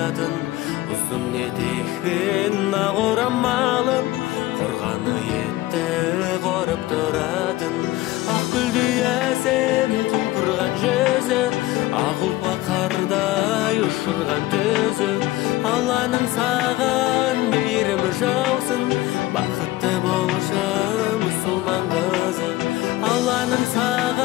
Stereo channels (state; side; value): quieter; right; 17.4 dB